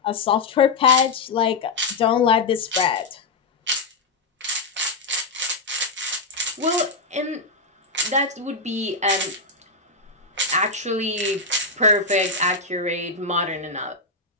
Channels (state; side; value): quieter; right; 3.6 dB